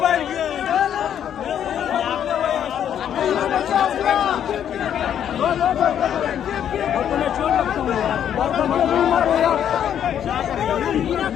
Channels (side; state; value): right; quieter; 9.5 dB